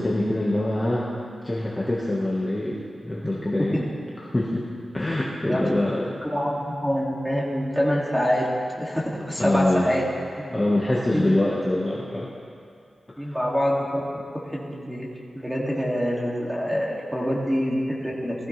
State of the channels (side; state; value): both; normal; correlation 0.96